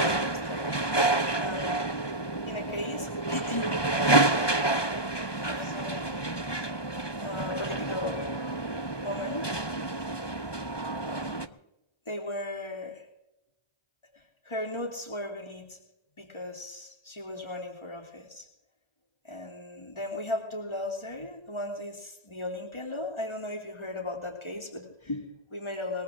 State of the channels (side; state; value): right; late; 1.2 ms